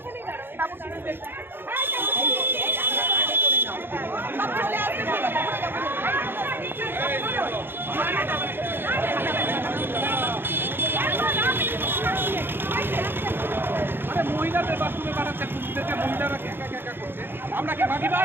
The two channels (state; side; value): late; left; 0.10 ms